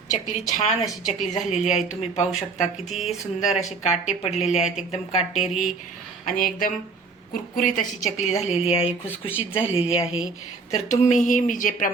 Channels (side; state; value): left; quieter; 4.3 dB